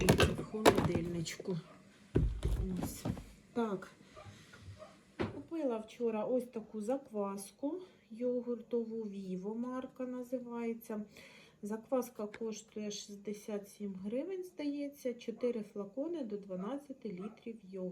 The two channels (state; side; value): identical; both; correlation 1.00